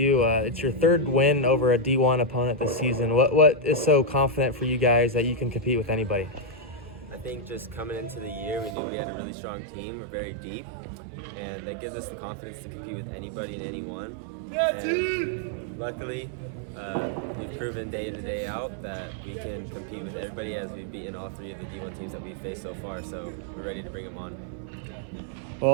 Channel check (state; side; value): drops out; left; at 8.8 s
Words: It's your third win over a D1 opponent this season. What is so confident for you guys that you can compete with anybody? I think just coming into the year, we knew we had a really strong team. We're very deep, and that gives us the confidence to compete with anybody and anyone. And luckily, we've proven day in, day out that we can compete with everybody, as we've beaten all three of the D1 teams that we've faced so far, so we're ready to bring them on.